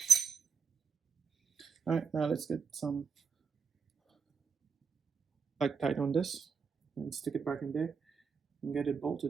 Alright, now let's get some tight on this and stick it back in there and get it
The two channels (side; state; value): left; quieter; 5.8 dB